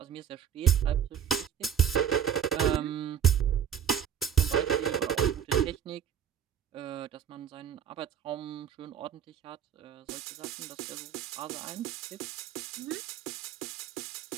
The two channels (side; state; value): left; quieter; 8.7 dB